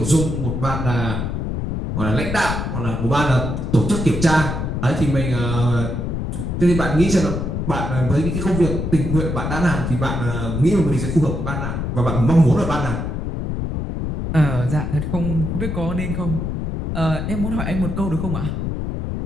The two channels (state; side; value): noise; left; rumble, 3 dB below the sound